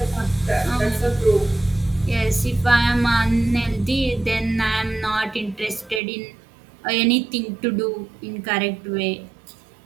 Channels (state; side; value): drops out; left; at 6.0 s